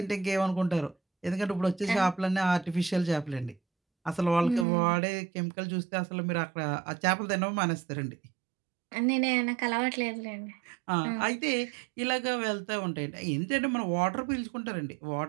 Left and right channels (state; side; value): drops out; left; at 4.7 s